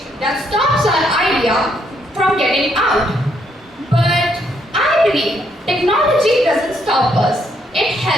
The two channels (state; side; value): normal; both; correlation 0.73